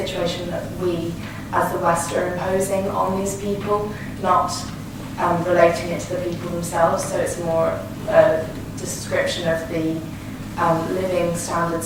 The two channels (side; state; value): both; identical; correlation 1.00